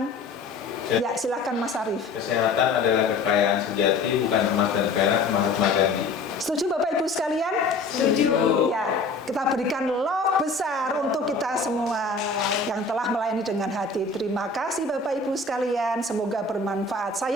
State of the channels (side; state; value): right; quieter; 3.7 dB